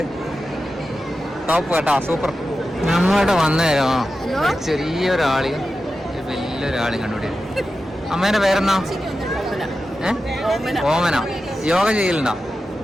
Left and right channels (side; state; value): both; normal; correlation 0.92